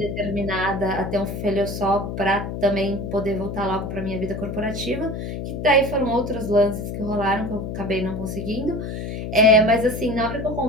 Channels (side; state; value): left; noise; hum, 5 dB below the sound